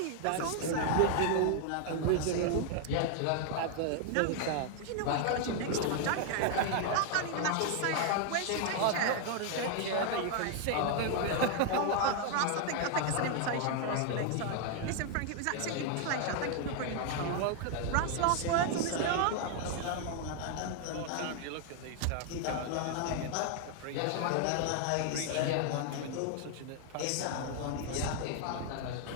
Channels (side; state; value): both; different; correlation 0.00